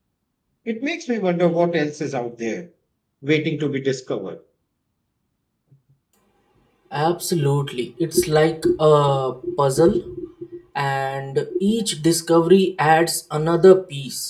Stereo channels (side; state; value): both; identical; correlation 1.00